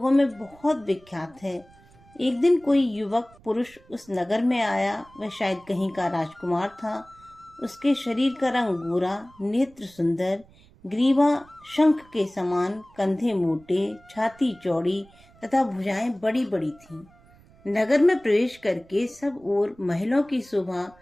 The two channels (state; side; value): noise; right; rumble, 27 dB below the sound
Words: में बहुत विख्यात है। एक दिन कोई युवक पुरुष उस नगर में आया। वह शायद कहीं का राजकुमार था। उसके शरीर का रंग गोरा, नेत्र सुंदर, ग्रीवा शंख के समान, कंधे मोटे, छाती चौड़ी तथा भुजाएं बड़ी बड़ी थीं। नगर में प्रवेश करके सब ओर महलों की शोभा